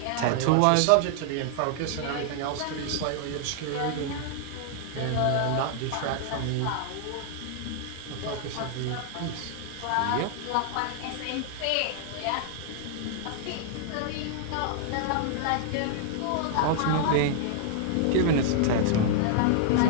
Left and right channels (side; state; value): both; different; correlation -0.01